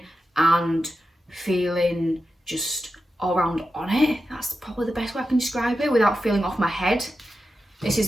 and feeling just all around on it. That's probably the best way I can describe it without feeling off my head. This is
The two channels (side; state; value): both; normal; correlation 0.90